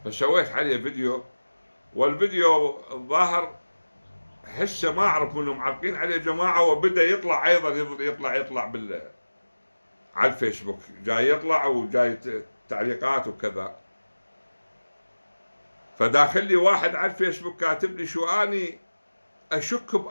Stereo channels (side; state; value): both; inverted; correlation -1.00